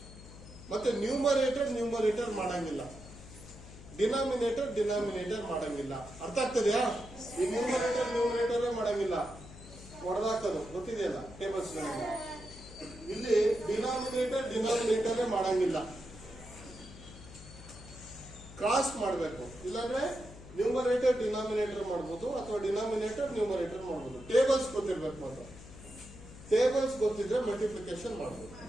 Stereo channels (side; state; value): left; noise; hum, 16 dB below the sound